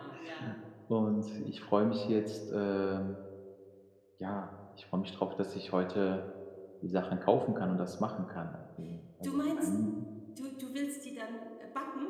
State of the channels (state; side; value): identical; both; correlation 1.00